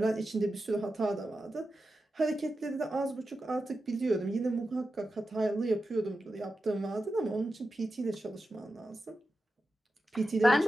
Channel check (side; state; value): both; normal; correlation 0.91